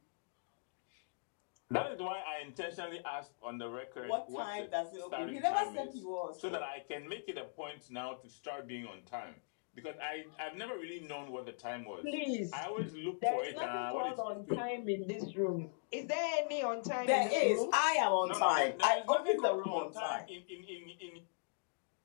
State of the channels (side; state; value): right; silent; digital silence